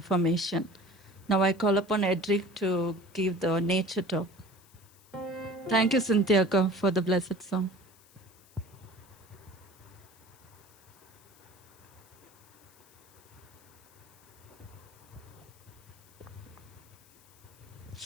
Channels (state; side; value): noise; left; hiss, 27 dB below the sound